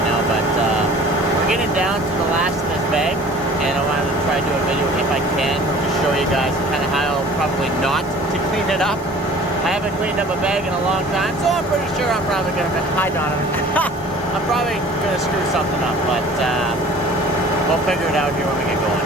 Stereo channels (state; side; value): normal; both; correlation 0.47